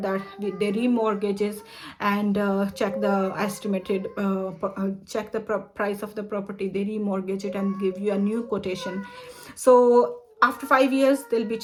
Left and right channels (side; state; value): both; identical; correlation 1.00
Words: they remortgages and check the estimated check the price of the property. They remortgage it and give you a new quotation. So after 5 years, they'll be